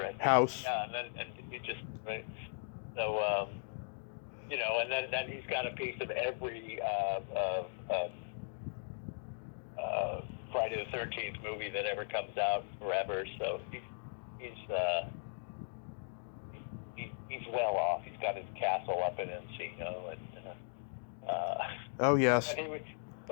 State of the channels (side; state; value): right; silent; digital silence